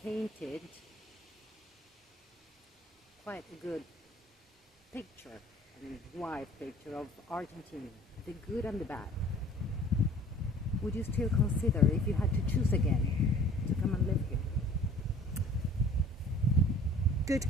painted quite a good picture, wide picture of Argentina, the good and the bad. Would you still consider, if you had to choose again, to come and live here? Good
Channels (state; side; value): normal; both; correlation 0.50